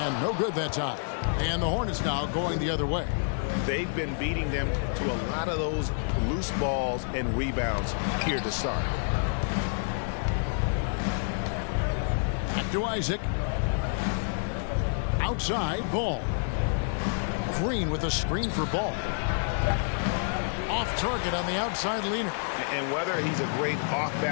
no good that time. And the Hornets now going the other way. They've been beating them to a lot of those loose balls and rebounds here to start. Back to Isaac. Outside, Ball. Green with a screen for Ball. Off target on the outside leaner. And whether he's a great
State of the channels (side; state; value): right; silent; 59 dB below the other